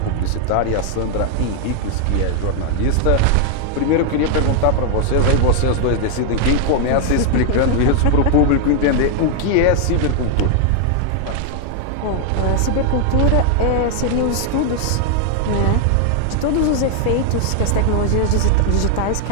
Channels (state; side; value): different; both; correlation 0.00